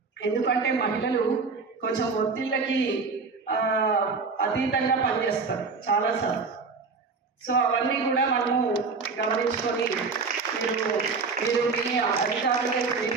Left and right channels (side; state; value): left; quieter; 4.6 dB